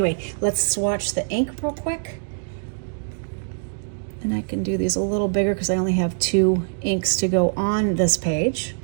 let's swatch the ink real quick. And I can do these a little bigger because I only have 2 inks to go on this page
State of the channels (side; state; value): left; silent; digital silence